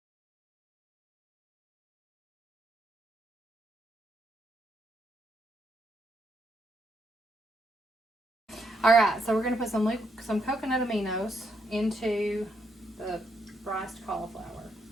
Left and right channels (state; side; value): normal; both; correlation 0.77